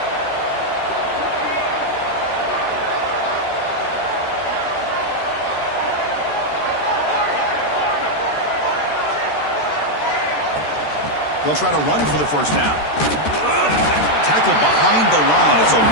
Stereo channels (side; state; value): right; late; 13 ms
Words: They'll try to run for the first down. Tackled behind the line. It's a